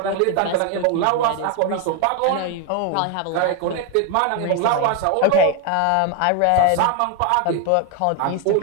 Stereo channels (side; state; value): both; different; correlation 0.01